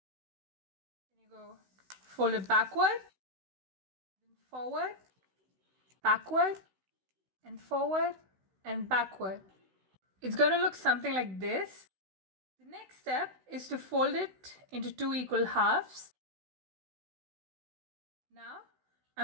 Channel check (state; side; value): late; left; 16 ms